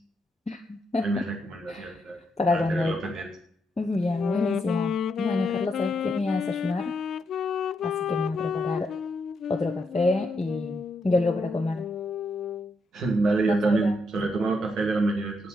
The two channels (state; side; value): normal; both; correlation 0.80